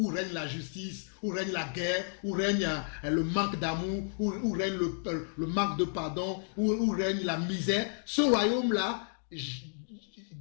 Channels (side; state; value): right; silent; digital silence